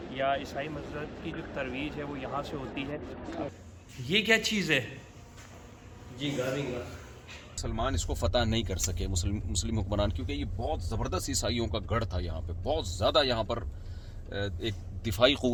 या ईसाई मज़हब की जो तरवीज है वो यहाँ से होती है। ये क्या चीज़ है जी? गाविंगा मुसलमान इसको फतह नहीं कर सके, मुस्लिम हुक्मरान, क्योंकि ये बहुत ज़बरदस्त ईसाइयों का गढ़ था। यहाँ पे बहुत ज़्यादा यहाँ पर एक दिफाई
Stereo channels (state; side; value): identical; both; correlation 1.00